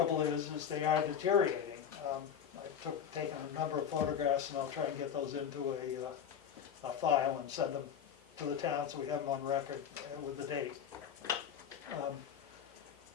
is they are deteriorating. I've taken a number of photographs and I'll try and get those into a file and send them to the town so we have them on record with the date.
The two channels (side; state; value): right; quieter; 8.2 dB